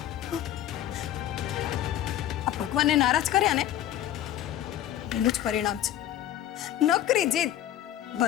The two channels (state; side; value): quieter; right; 12.2 dB